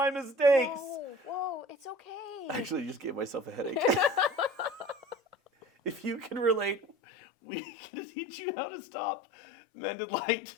mistakes. Whoa, it's okay. I actually just gave myself a headache. If you can relate, we can teach you how to stop Mended Light.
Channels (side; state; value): right; drops out; at 7.0 s